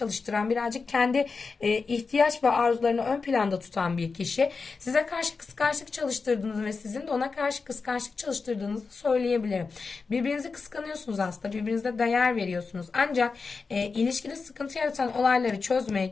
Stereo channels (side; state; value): right; quieter; 4.6 dB